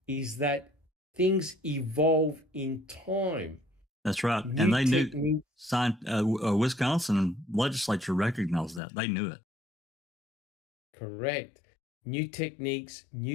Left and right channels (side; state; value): right; drops out; at 8.8 s